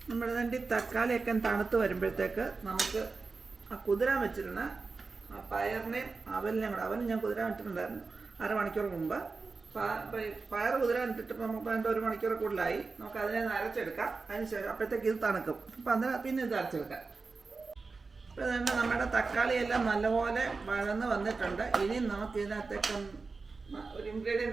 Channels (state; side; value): quieter; left; 4.2 dB